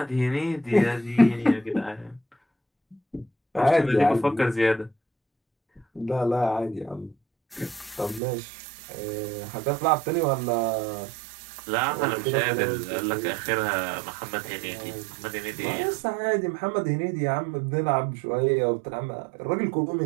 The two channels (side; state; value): left; drops out; at 8.2 s